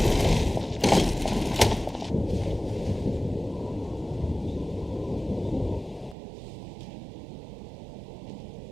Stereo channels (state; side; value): drops out; left; at 6.2 s